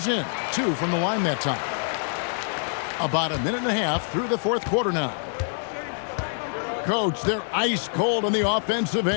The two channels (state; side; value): silent; right; digital silence